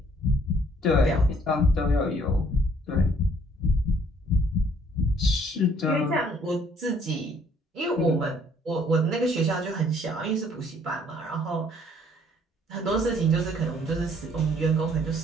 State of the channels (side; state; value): both; normal; correlation 0.61